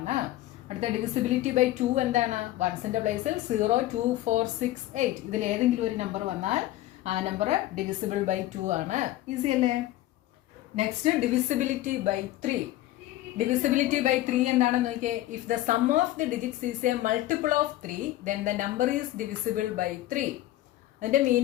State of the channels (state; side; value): quieter; right; 15.3 dB